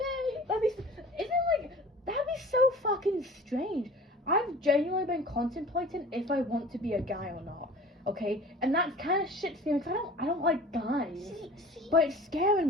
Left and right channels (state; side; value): normal; both; correlation 0.43